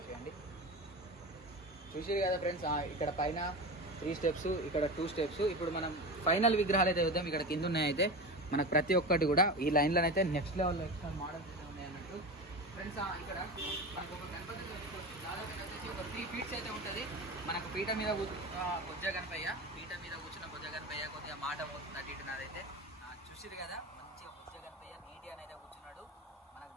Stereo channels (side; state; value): both; normal; correlation 0.26